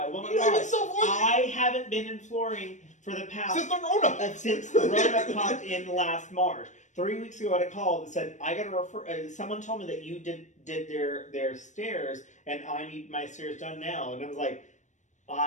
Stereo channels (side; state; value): right; late; 0.35 ms